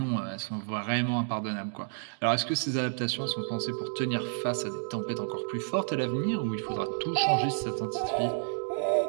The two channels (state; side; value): silent; left; digital silence